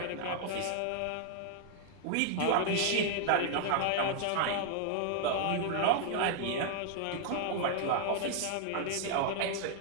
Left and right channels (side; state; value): both; different; correlation 0.00